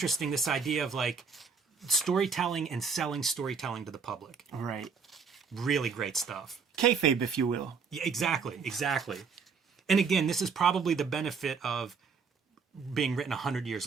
this idea of like storytelling and selling storytelling to the public. Right. Really great stuff. Kayfabe, if you will. Yeah, exactly. And again, this is probably the benefit of being written 100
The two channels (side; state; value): left; quieter; 5.6 dB